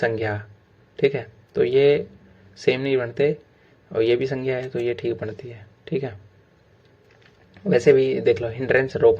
ठीक है। तो ये सेम नहीं बनते, और ये भी संज्ञा है तो ये ठीक बनती है, ठीक है। वैसे भी देख लो, हिंड्रेंस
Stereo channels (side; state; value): both; identical; correlation 1.00